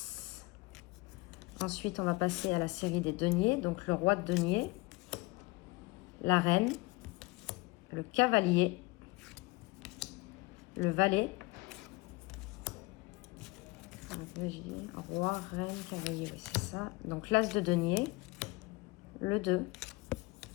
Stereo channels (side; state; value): right; quieter; 23.4 dB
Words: Ensuite, on va passer à la série des deniers. Donc, le roi de denier, la reine, le cavalier, le valet, roi, reine, cavalier, c'est ça. Donc, l'as de denier, le 2,